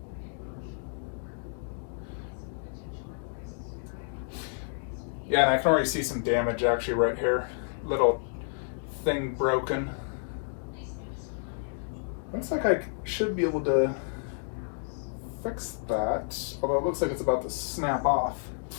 Yeah, and I can already see some damage actually right here. Little thing broken. Looks like I should be able to fix that, although it looks like it's about to snap off.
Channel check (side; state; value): right; silent; digital silence